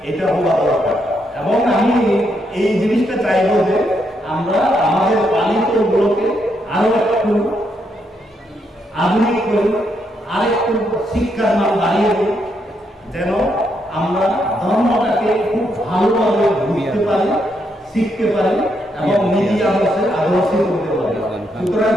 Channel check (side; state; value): both; normal; correlation 0.78